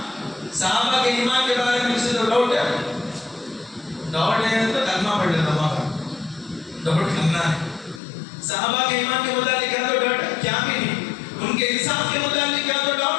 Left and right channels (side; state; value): right; drops out; at 8.0 s